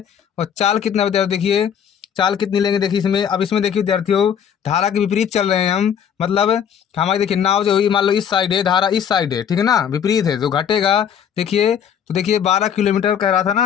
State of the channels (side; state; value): right; quieter; 8.4 dB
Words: और चाल कितना विद्यार्थी, देखिए चाल कितनी लेंगे, देखिए इसमें अब इसमें देखिए विद्यार्थियों धारा के विपरीत चल रहे हैं हम, मतलब हमारी देखिए नाव जो हुई मान लो इस साइड है, धारा इस साइड है, ठीक है ना, विपरीत है जो घटेगा। देखिए तो देखिए 12 किलोमीटर कह रहा था